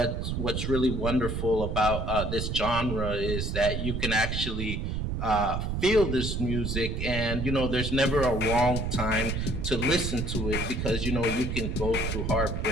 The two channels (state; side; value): noise; right; rumble, 2 dB below the sound